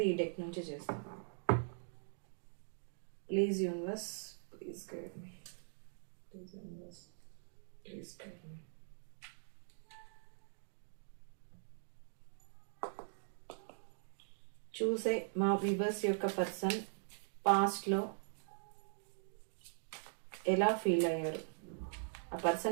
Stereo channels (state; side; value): silent; left; digital silence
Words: ఈ డెక్ నుంచి చేస్తాను. Please universe, please guide me. Please universe, please guide me. చూసే మా వ్యూవర్స్ యొక్క పర్సన్ పాస్ట్లో ఎలా ఫీల్ అయ్యారు, ఆ